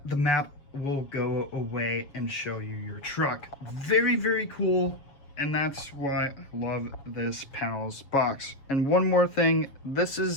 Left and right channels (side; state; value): right; late; 7.1 ms